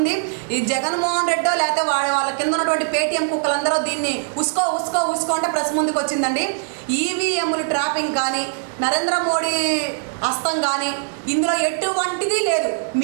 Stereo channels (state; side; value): silent; left; digital silence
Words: ఈ జగన్మోహన్ రెడ్డో లేకపోతే వాళ్ళ కింద ఉన్నటువంటి పేటీఎం కుక్కలందరూ దీన్ని ఉసుకో ఉసుకో ఉసుకో అంటే ప్రెస్ ముందుకు వచ్చిందండి. ఈవీఎంలు ట్రాపింగ్ కానీ నరేంద్ర మోడీ హస్తం కానీ ఇందులో ఎటువంటిది లేదు.